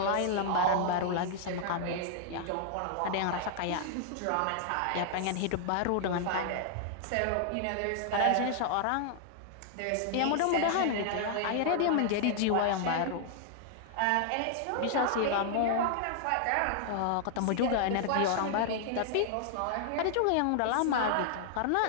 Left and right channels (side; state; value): both; different; correlation -0.01